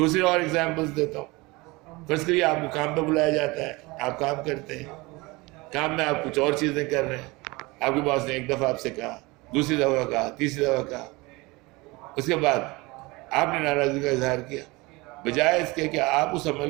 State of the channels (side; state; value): left; quieter; 23.5 dB